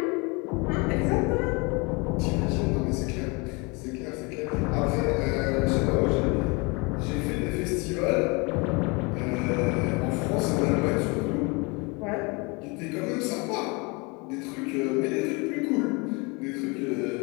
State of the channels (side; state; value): right; quieter; 28.7 dB